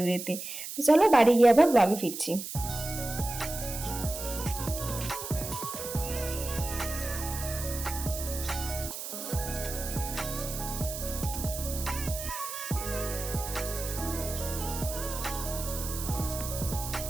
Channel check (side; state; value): right; noise; hiss, 7 dB below the sound